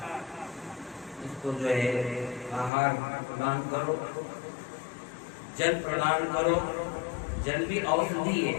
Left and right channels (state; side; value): drops out; right; at 2.7 s